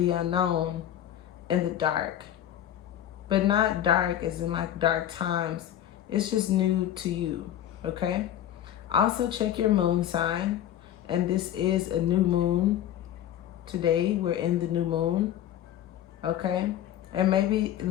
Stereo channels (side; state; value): right; quieter; 11.3 dB